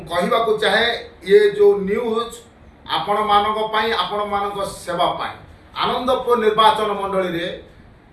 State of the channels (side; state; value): both; identical; correlation 1.00